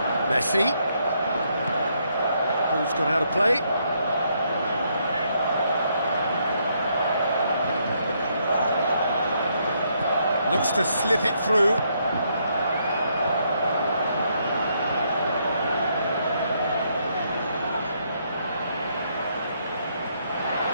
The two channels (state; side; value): inverted; both; correlation -0.74